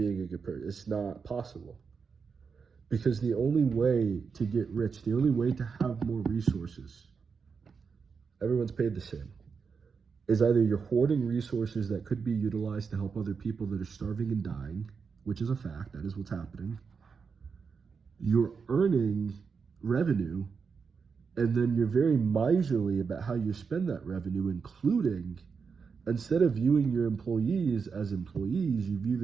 a good person. It's not possible. Because the only way to get rich, the only way to have more resources, everyone's paid the same, is either you're hoarding resources that could be utilized to help other people that are starving and dying, which is a fact, that is what's happening. You're earning revenue, and then you're very miserly about how you spend that revenue, including, instead of viewing your employees as employees, you view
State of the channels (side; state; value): left; quieter; 5.6 dB